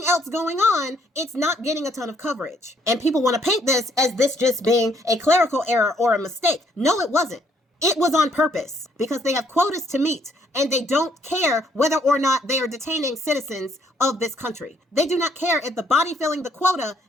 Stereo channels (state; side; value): normal; both; correlation 0.68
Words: else going on, it's not getting a ton of coverage. And people want to paint this as this just being a clerical error or a mistake. No, it wasn't. It was on purpose because they have quotas to meet and they don't care whether or not they are detaining citizens of this country. They do not care if the body filling the quota